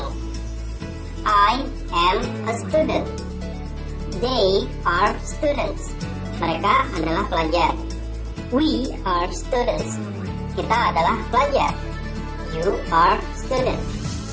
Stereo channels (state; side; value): identical; both; correlation 1.00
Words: I am a student. They are students. Mereka adalah pelajar. We are students. Kita adalah pelajar. You are student.